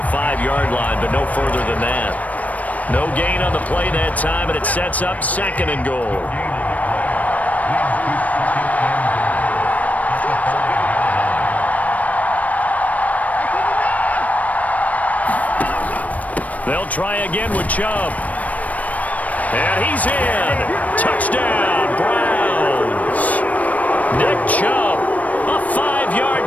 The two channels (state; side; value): late; right; 0.071 ms